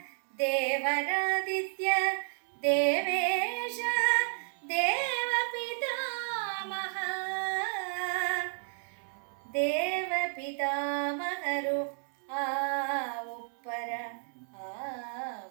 ದೇವರಾದಿತ್ಯ ದೇವೇಶ ದೇವ ಪಿತಾಮಹ ದೇವ ಪಿತಾಮಹರು ಆ ಉಪ್ಪರ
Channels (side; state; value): left; silent; digital silence